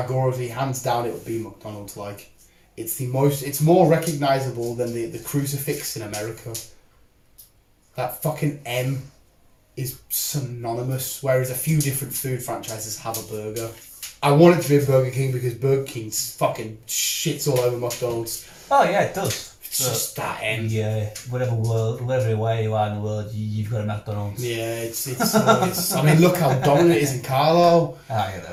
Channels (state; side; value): identical; both; correlation 1.00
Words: hands down, it would be McDonald's. Like, it's more recognisable than the crucifix in America. That fucking M is synonymous, whereas a few different food franchises have a burger. I want it to be a Burger King because Burger King fucking shits all over McDonald's. Oh yeah, it does. It's just that end. Yeah, whatever way you are in the world, you've got a McDonald's. Yeah, it's I mean, look how dominant it is in Carlo. Ah, you